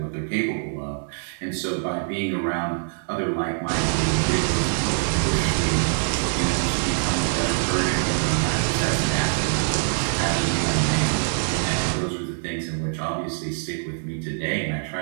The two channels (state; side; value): silent; left; 60 dB below the other